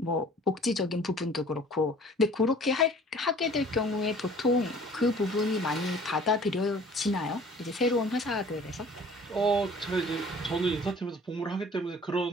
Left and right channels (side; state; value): both; normal; correlation 0.50